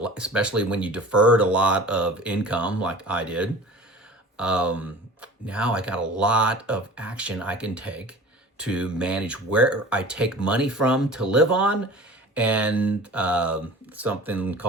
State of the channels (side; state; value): both; normal; correlation 0.41